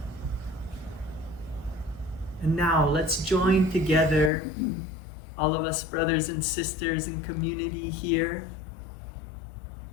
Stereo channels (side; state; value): right; drops out; at 4.3 s